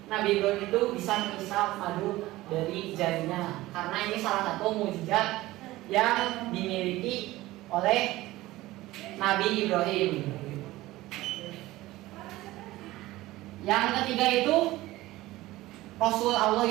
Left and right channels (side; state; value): left; quieter; 17.7 dB